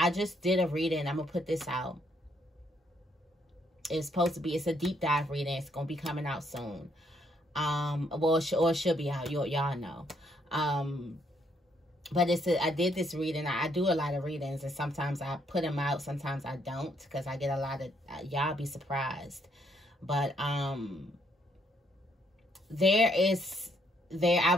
just did a reading. I'm gonna put this out. It's supposed to be, it's a deep dive reading. It's gonna be coming out soon. Well, it should be out. Y'all know. But I did this reading. I do a lot of readings, and sometimes I put them out, sometimes I don't, because I get a lot of, y'all be surprised. But I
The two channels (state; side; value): normal; both; correlation 0.72